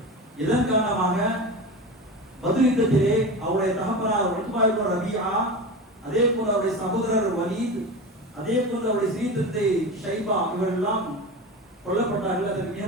இதன் காரணமாக பத்ர் யுத்தத்திலே அவருடைய தகப்பனார் உத்பா இப்னு ரபீஆ, அதே போல அவருடைய சகோதரர் வலீத், அதே போல அவருடைய சீதத்தை ஷைபா இவரெல்லாம் கொல்லப்பட்டார்கள். அதற்கு மிக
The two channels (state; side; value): normal; both; correlation 0.27